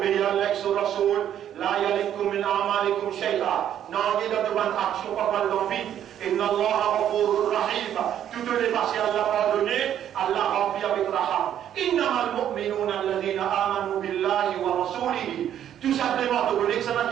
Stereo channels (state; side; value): quieter; left; 10.4 dB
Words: à Allah et son Rasoul, la yalikum min a'malikum shay'a. Non, il y a de bonnes actions pas mal dans vide. Inna Allah ghafurur rahim. Toutes les passées Allah pardonné, Allah remplit avec raham. Innamal mu'minuna alladhina amanu billahi wa rasulihi. Tout simplement, tu connais que ça n'a